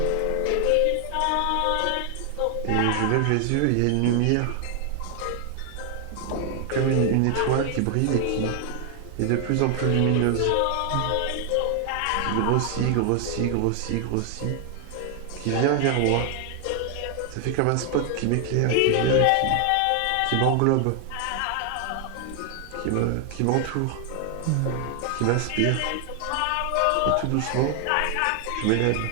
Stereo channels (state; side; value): different; both; correlation 0.00